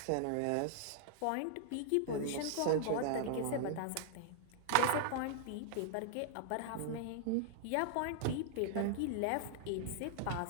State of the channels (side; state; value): both; different; correlation -0.01